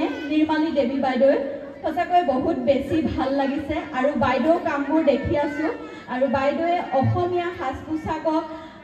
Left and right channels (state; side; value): identical; both; correlation 1.00